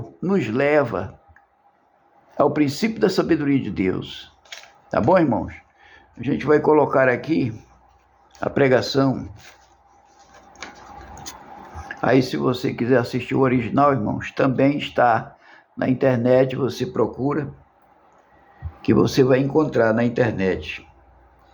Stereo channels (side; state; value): both; identical; correlation 1.00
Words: nos leva ao princípio da sabedoria de Deus. Tá bom, irmãos? A gente vai colocar aqui a pregação. Aí, se você quiser assistir o original, irmãos, também está na internet, você procura, que você vai encontrar na internet.